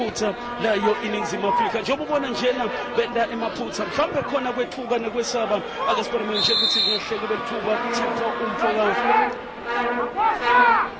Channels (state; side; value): identical; both; correlation 1.00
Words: layo iningizimu Afrika. Njengoba ubona njena benda emaphutha mhlawumbe khona kwethuka nekwesaba akasibone nje ukuthi ngehle kube lithuba thipha umfoka